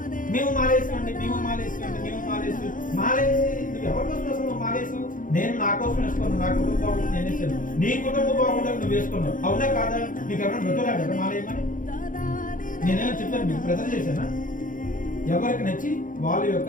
మేము మాలేసామండి, మేము మాలేసామండి, మేము మాలేసి మాలేసి నువ్వు ఎవరి కోసం అసలు నువ్వు మాలేసావు? నేను నా కోసం వేసుకున్నాను, నా కుటుంబం బాగుంటుంది నేను వేసాను. నీ కుటుంబం బాగుంటుంది నువ్వు వేసుకున్నావు. అవునా కాదా? నీకు ఎవరైనా బ్రతులాడు కదా మాలేయమని? నేనేమో చెప్పాను, మీకు ప్రజలు చేశానా? ఎవరికి నచ్చి వాళ్ళ యొక్క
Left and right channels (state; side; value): late; right; 0.39 ms